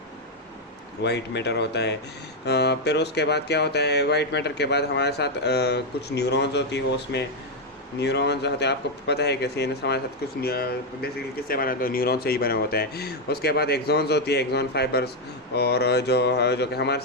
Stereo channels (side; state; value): both; normal; correlation 0.02